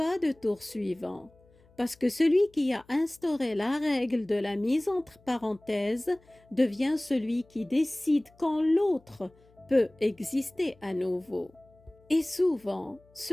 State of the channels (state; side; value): noise; left; hum, 30 dB below the sound